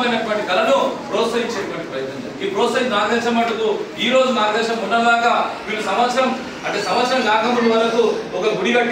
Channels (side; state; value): both; identical; correlation 1.00